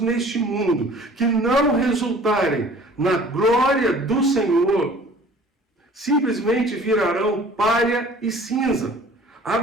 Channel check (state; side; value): normal; both; correlation 0.49